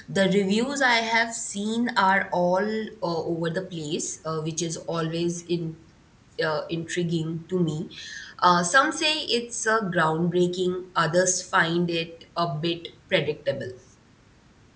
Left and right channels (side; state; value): both; identical; correlation 1.00